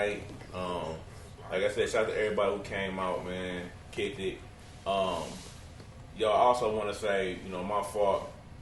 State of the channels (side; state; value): both; identical; correlation 1.00